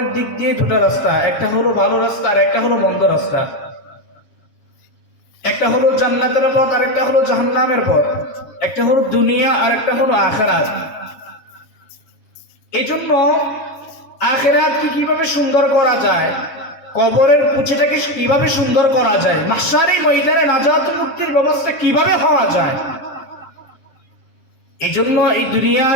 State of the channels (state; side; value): late; right; 7.2 ms